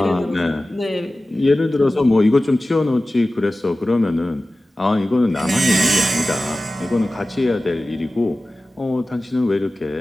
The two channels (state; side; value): normal; both; correlation 0.96